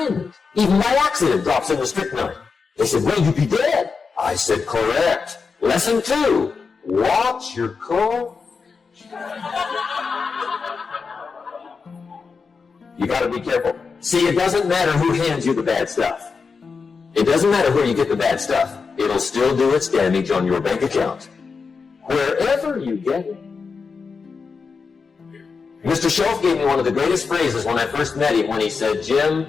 even by accident, drops in the strychnine? They said, well, you'd be dead. I said, correct. Lesson 2. Watch your cough. You got to be careful. See, it doesn't matter who hands you the bad stuff. It doesn't matter where you get the bad stuff. It'll still do its damage on your bank account, wherever you get it. Mr. Shove gave me one of the greatest phrases when I first met him when he said,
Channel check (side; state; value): right; quieter; 5.1 dB